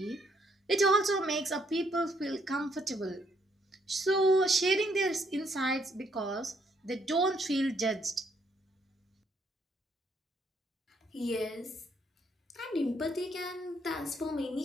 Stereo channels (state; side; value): normal; both; correlation 0.71